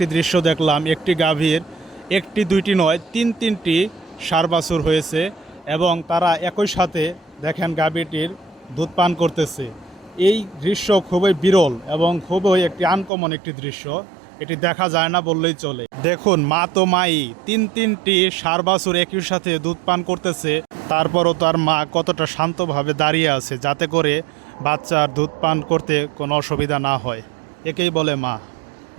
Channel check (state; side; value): drops out; left; at 13.1 s